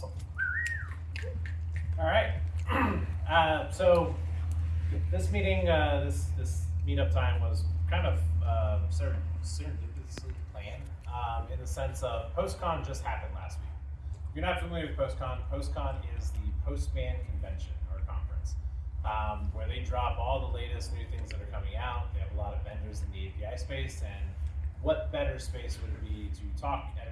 All right. So this meeting, this meetup time was kind of serendipitously planned in the sense of Postcon just happened last week. If you're not familiar with Postcon, Postcon is the Postman convention or conference where they drop all the latest new things that are coming out. They have a lot of vendors in the API space, and what better space would it be to talk at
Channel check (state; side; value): identical; both; correlation 1.00